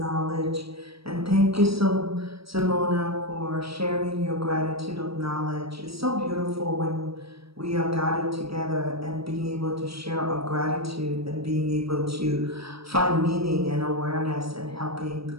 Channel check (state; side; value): late; left; 0.76 ms